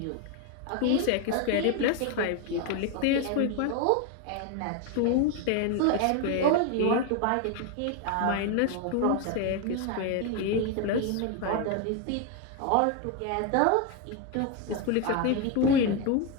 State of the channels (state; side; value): different; both; correlation 0.01